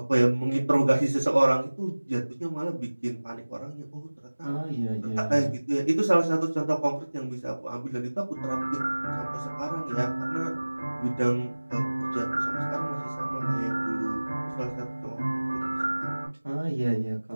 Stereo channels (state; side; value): inverted; both; correlation -1.00